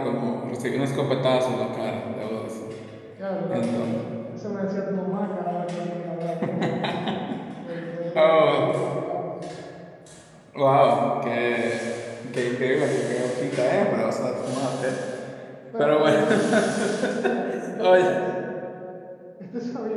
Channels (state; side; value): identical; both; correlation 1.00